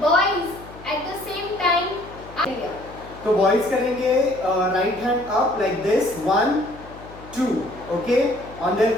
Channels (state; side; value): noise; left; hum, 19 dB below the sound